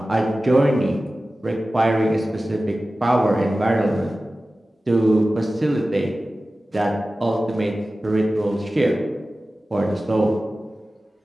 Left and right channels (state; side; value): normal; both; correlation 0.96